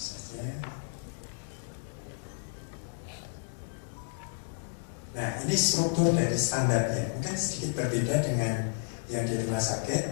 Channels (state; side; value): silent; right; digital silence